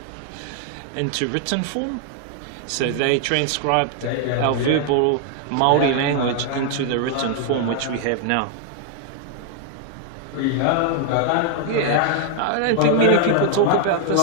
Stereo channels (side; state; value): both; different; correlation 0.00